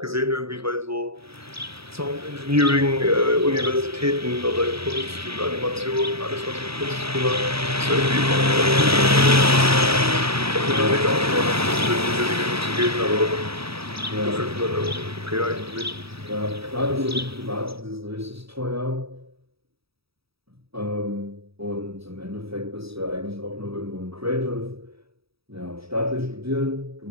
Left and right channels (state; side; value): late; left; 0.77 ms